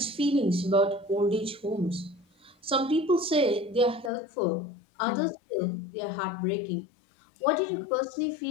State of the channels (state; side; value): drops out; right; at 4.1 s